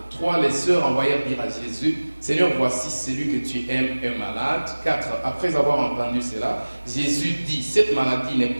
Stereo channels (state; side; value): inverted; both; correlation -1.00